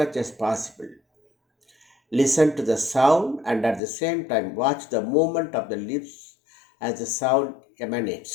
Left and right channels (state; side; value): drops out; right; at 3.8 s